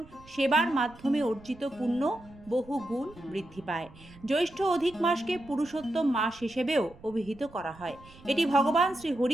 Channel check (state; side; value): noise; right; rumble, 22 dB below the sound